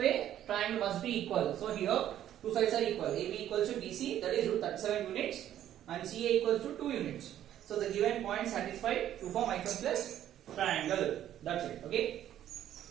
triangle must be equal. So here two sides are equal. AB equals to BC, that is root 37 units, and CA equals to 2 units. So the given point satisfied to form isosceles triangle. That's it. Okay.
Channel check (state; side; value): quieter; left; 11.5 dB